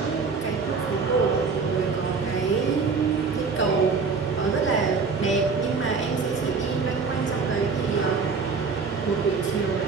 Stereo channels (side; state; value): left; quieter; 4.9 dB